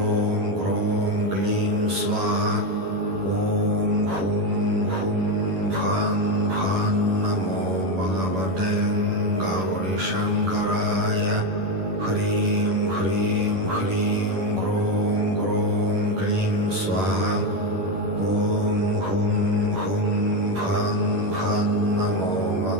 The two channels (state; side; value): late; left; 11 ms